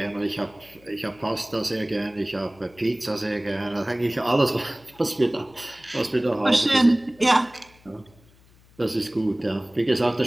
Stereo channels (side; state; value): left; noise; hum, 28 dB below the sound